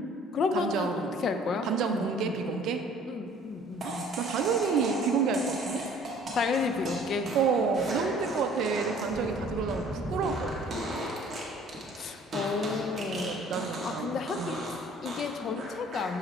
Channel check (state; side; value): normal; both; correlation 0.53